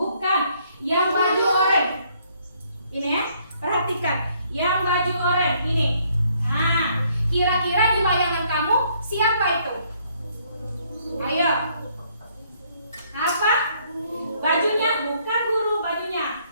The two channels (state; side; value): inverted; both; correlation -0.67